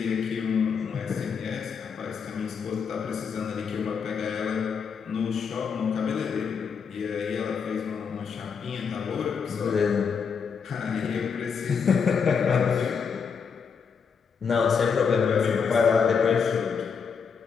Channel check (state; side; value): quieter; right; 6.2 dB